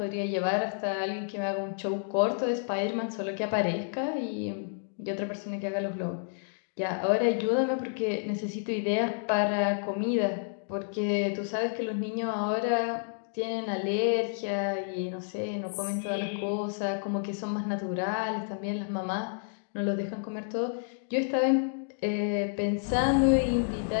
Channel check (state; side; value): silent; right; digital silence